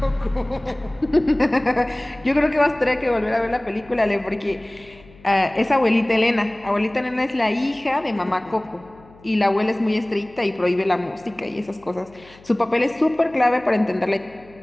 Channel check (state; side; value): noise; left; hum, 25 dB below the sound